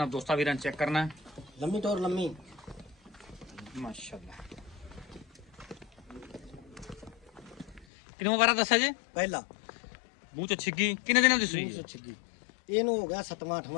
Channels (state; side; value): drops out; right; at 7.9 s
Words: ਦੋਸਤਾਂ ਵੀਰਾਂ ਚੈੱਕ ਕਰਨਾ। ਲੰਮੀ ਟੋਰ ਲੰਮੀ ਮਾਸ਼ਾਅੱਲਾ। ਕਿੰਨਾ ਵਾਰਾ ਦੱਸਿਆ ਜੇ? ਪਹਿਲਾ ਮੂੰਹ ਚ ਛਿੱਗੀ ਕਿੰਨੇ ਦਿਨਾਂ ਦੀ ਸੂਈ? ਮੂੰਹ ਛਿੱਗੀ ਇਹਨੂੰ ਹੋ ਗਿਆ 7ਵਾਂ